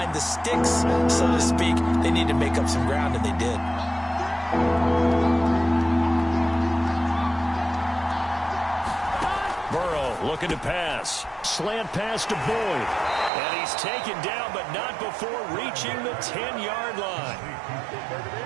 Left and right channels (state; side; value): drops out; left; at 13.3 s